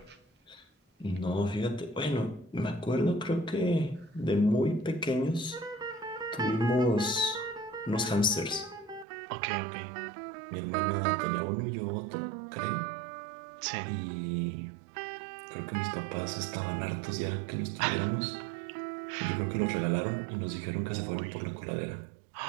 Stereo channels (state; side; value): drops out; left; at 9.1 s